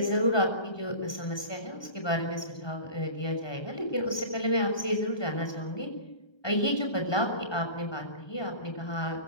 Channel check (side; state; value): right; late; 1.2 ms